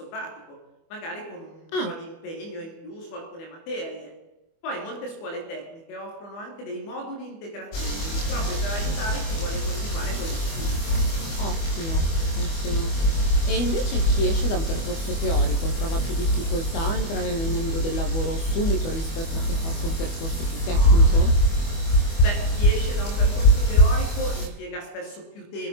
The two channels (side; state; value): right; late; 24 ms